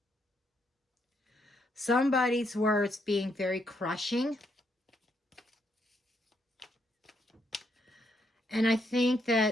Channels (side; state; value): both; normal; correlation 0.76